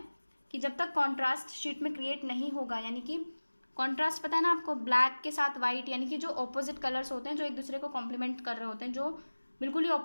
कि जब तक कॉन्ट्रास्ट शीट में क्रिएट नहीं होगा, यानी कि कॉन्ट्रास्ट पता है ना आपको, ब्लैक के साथ वाइट, यानी कि जो ऑपोजिट कलर्स होते हैं जो एक दूसरे को कॉम्प्लीमेंट कर रहे होते हैं, जो बिल्कुल ही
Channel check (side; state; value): both; inverted; correlation -1.00